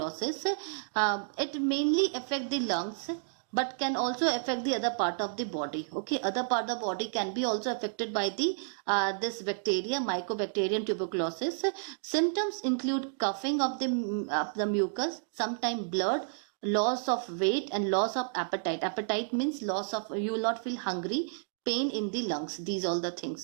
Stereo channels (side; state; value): left; silent; digital silence